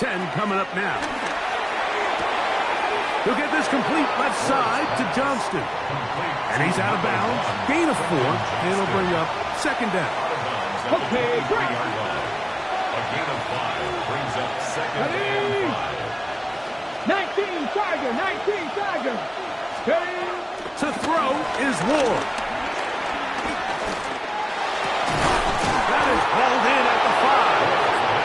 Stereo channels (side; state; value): both; identical; correlation 1.00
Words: coming up now. He'll get this complete left side to Johnston. And he's out of bounds. Gain of 4. And it'll bring up 2nd down. Okay, great. A gain of 5 brings up 2nd and 5. 19 Tiger, 19 Tiger. Steady. To throw is Ward. That is hauled in at the